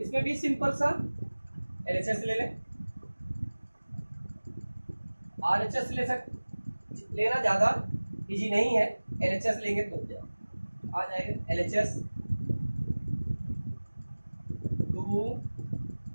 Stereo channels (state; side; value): inverted; both; correlation -1.00